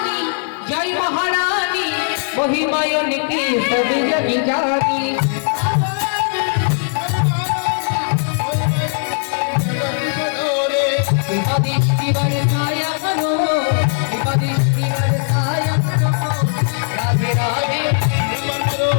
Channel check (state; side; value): silent; right; digital silence